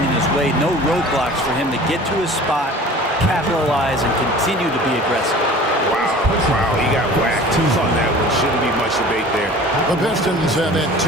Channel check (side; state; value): both; normal; correlation 0.43